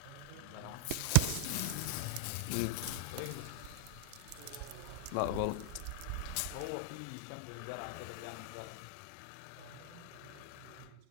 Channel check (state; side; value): different; both; correlation 0.00